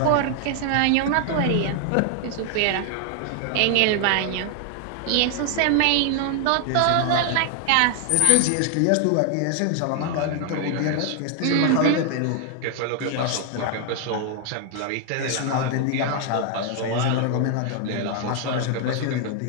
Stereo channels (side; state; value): both; different; correlation 0.00